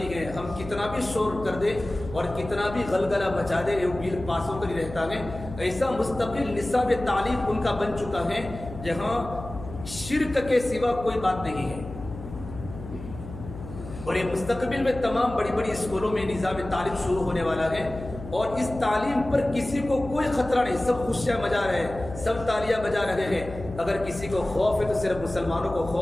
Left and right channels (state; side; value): noise; left; hum, 12 dB below the sound